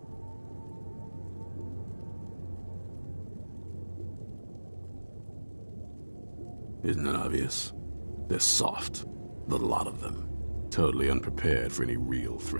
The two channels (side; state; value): both; inverted; correlation -1.00